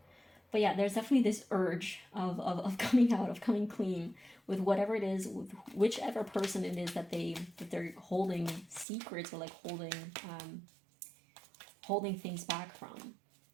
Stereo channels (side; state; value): left; drops out; at 8.8 s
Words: But yeah, there's definitely this urge of coming out, of coming clean with whatever it is, with whichever person it is that they're holding secrets, or like holding things back from,